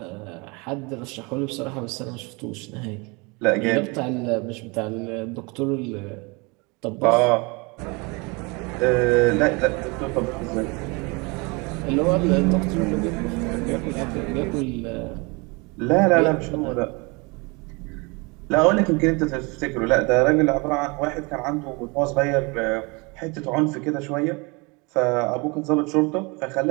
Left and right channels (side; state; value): left; quieter; 28.3 dB